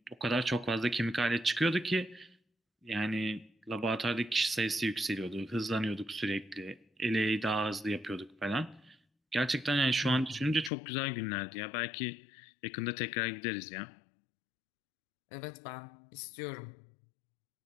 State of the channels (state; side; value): drops out; right; at 10.7 s